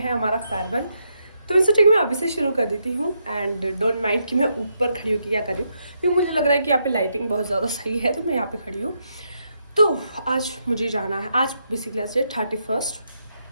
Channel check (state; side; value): inverted; both; correlation -0.80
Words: हमारा फेयरवेल। तो मैं सोचा कि मैं अभी से शुरू कर देती हूँ एंड डोंट माइंड कि मैं ऊपर खड़ी हूँ कि क्या कर रही हूँ, क्योंकि मुझे लग रहा है कि यहाँ पे लाइटिंग बहुत ज़्यादा सही है तो मैं यहाँ पे खड़ी हूँ। तो आज मुझे जाना है, आज बेसिकली आज 31